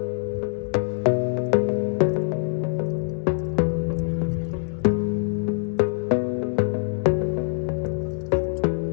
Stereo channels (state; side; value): silent; right; 62 dB below the other